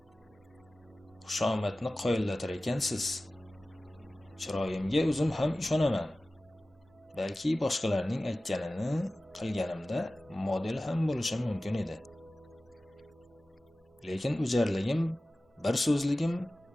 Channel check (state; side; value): normal; both; correlation 0.96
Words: Xushomadni qoyillatar ekansiz. Chiroyimga o'zim ham ishonaman. Balki boshqalarning aytganini qilganimda model ham bo'lishim mumkin edi. Lekin o'jarligim, bir so'zligim,